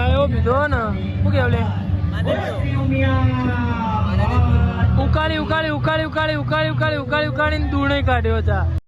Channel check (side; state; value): both; identical; correlation 1.00